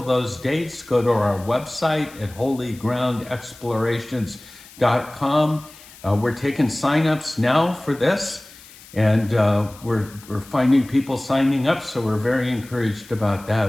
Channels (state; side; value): noise; left; hiss, 21 dB below the sound